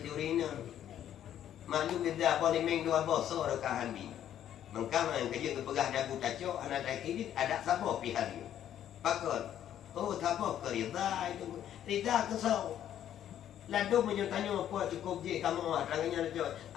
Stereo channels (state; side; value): quieter; right; 10.8 dB